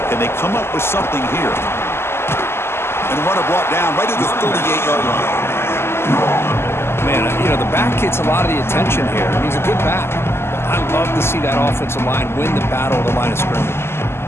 Can they come up with something here? And the runner brought down right at the 38-yard line. Man, you know, the back gets a lot of the attention here, and he's a good back. But I love to see that offensive line win the battle of the line of scrimmage.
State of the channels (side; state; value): right; late; 0.12 ms